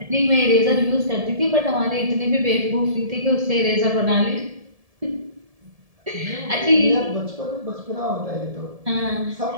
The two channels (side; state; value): left; late; 1.7 ms